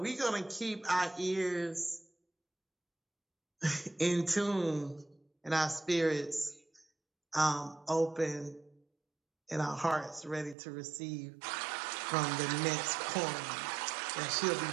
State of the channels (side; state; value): left; drops out; at 10.6 s